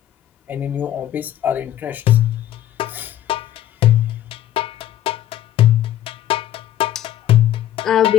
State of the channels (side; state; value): right; quieter; 12.4 dB